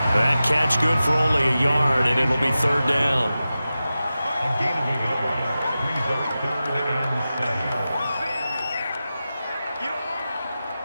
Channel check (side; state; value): both; inverted; correlation -0.93